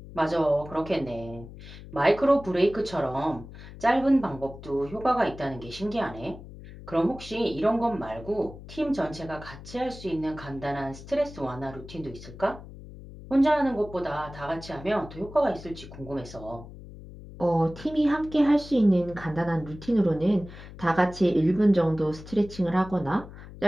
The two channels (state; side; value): noise; left; hum, 15 dB below the sound